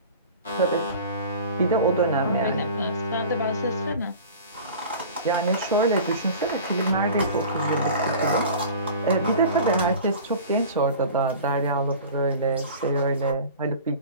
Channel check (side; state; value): both; inverted; correlation -0.40